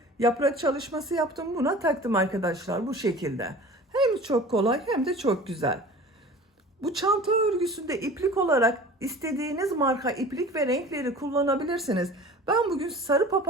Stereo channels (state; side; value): normal; both; correlation 0.41